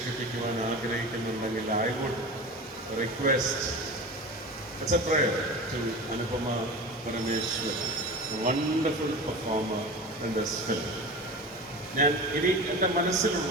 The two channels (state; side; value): normal; both; correlation 0.31